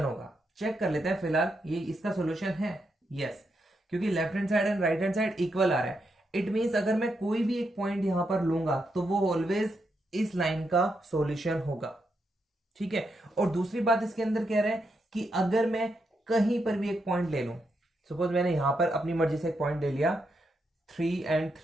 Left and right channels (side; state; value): both; normal; correlation 0.82